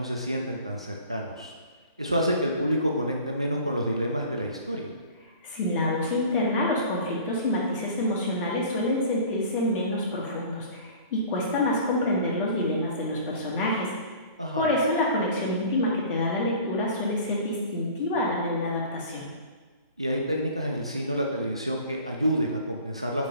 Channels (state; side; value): inverted; both; correlation -0.44